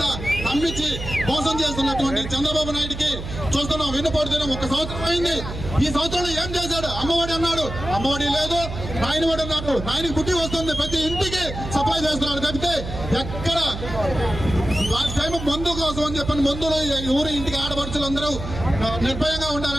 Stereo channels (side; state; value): right; noise; hum, 8 dB below the sound